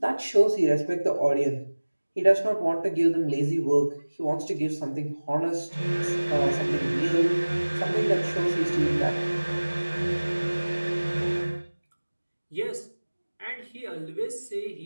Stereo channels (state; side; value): inverted; both; correlation -1.00